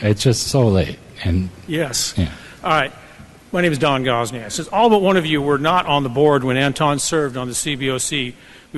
It's just so late. And yes. Yeah. All right. My name is Don Gosney. It says all but one of you were not on the board when Anton served on the CBOC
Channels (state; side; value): identical; both; correlation 1.00